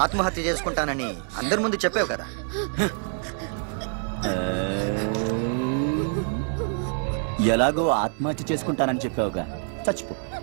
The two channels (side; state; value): left; silent; 58 dB below the other